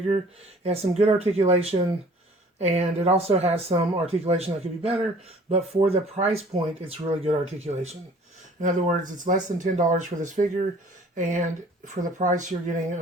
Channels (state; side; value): normal; both; correlation 0.52